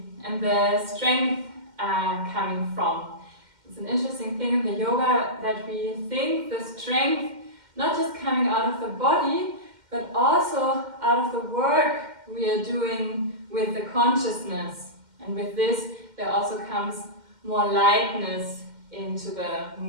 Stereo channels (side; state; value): left; late; 2.1 ms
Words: and the strength are coming from. It's an interesting thing in the yoga that we think the strength not just coming out of the body, but also out of the work we are doing with the consciousness. And with this, there also comes more lightness into the